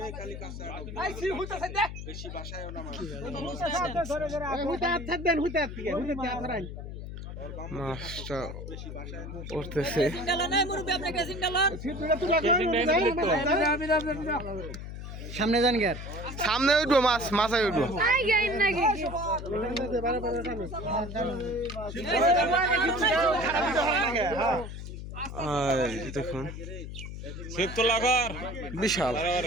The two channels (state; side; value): noise; left; hum, 9 dB below the sound